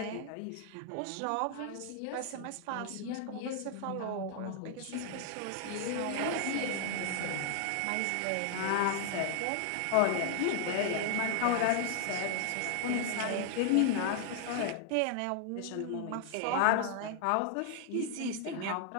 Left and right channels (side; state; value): both; different; correlation 0.00